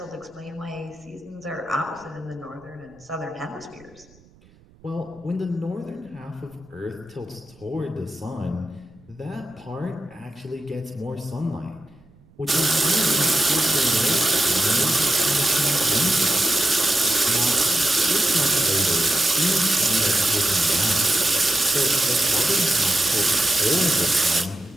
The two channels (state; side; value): noise; right; rumble, 28 dB below the sound